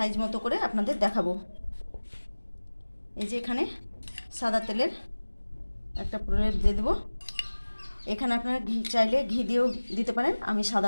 মতো করে আপনাদের দেখাবো। এই যে এখানে সাদা তেলের একটা প্রলেপ দিয়ে দেবো। এখানে আপনারা ঘি চাইলে ঘি দিয়েও দিতে পারেন, আমি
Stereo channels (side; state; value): both; inverted; correlation -1.00